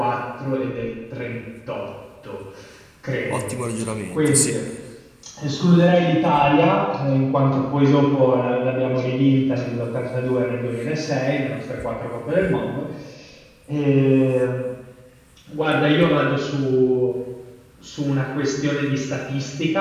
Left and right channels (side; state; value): both; identical; correlation 1.00